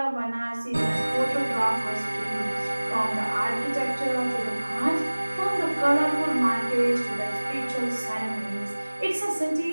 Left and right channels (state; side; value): inverted; both; correlation -1.00